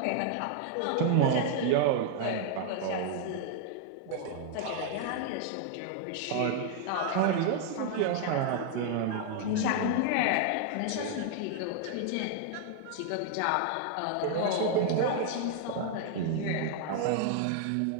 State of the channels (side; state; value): both; different; correlation 0.00